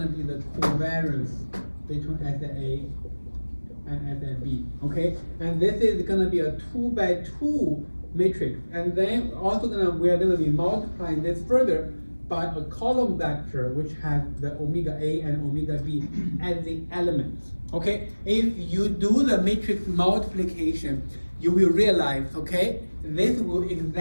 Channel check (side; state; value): both; inverted; correlation -1.00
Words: be the covariance between asset A and asset B, okay, and this is gonna be a 2 by 2 matrix, and then also we are gonna be multiplying this further by a column vector which has the omega A and omega B as the elements. Okay, if you do the matrix multiplication, you will realize, okay, this will